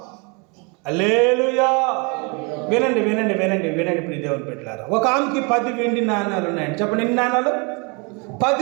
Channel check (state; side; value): quieter; left; 31.7 dB